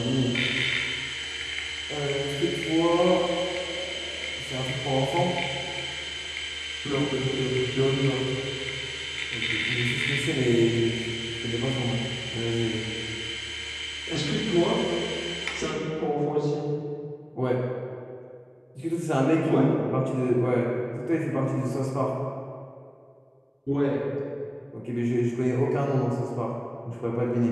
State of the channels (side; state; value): both; identical; correlation 1.00